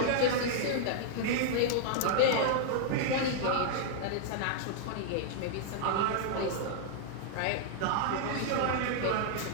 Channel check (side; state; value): both; different; correlation -0.01